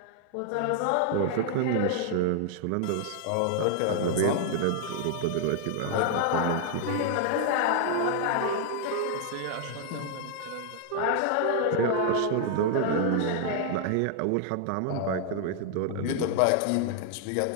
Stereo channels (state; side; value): different; both; correlation 0.00